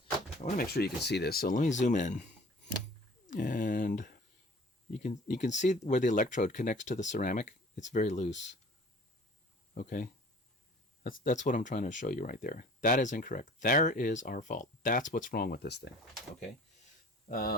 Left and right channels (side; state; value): both; normal; correlation 0.48